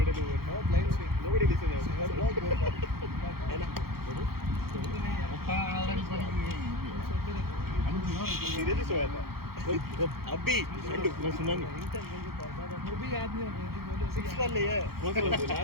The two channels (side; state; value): left; late; 0.94 ms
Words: over. No blind swing. Nobody listens. Seriously सोया था. अभी ठंड मैं सुना नहीं. वो भी आदमी 6 कर लिए